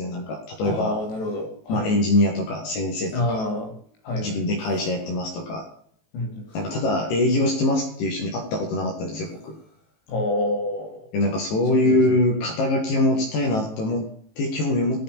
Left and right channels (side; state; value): right; late; 18 ms